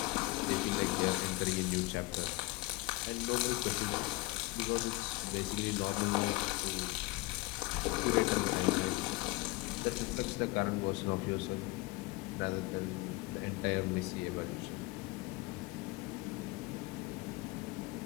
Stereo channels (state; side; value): quieter; right; 21.7 dB